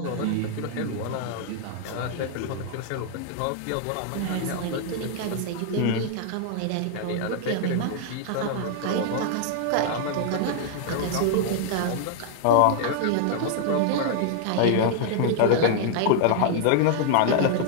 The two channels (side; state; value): both; different; correlation -0.01